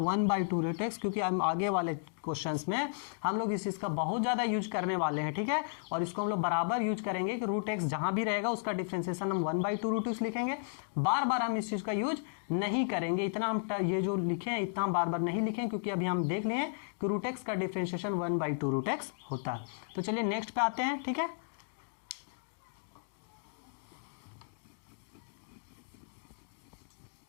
1/2 रूट एक्स, क्योंकि हम आगे वाले क्वेश्चंस में हम लोग इस चीज का बहुत ज्यादा यूज करने वाले हैं, ठीक है। और इसको हम लोग बराबर यूज करेंगे कि रूट एक्स जहां भी रहेगा उसका डिफरेंशिएशन हम 1/2 रूट एक्स लिखेंगे। बार बार हम इस चीज का यूज नहीं करेंगे, इतना हम ये जो लिखे हैं इतना बार बार नहीं लिखें, क्योंकि अभी हम देख लिए कि रूट एक्स का डिफरेंशिएशन 1/2 रूट एक्स होता है। तो चलिए नेक्स्ट पे आते हैं, ठीक है।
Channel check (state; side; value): silent; right; digital silence